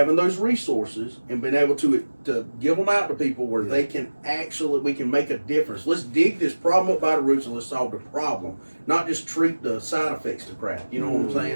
those resources and being able to give them out to people where they can we can make a difference. Let's dig this problem up by the roots and let's solve the problem, not just treat the side effects to crap. You know what I'm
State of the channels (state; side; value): inverted; both; correlation -1.00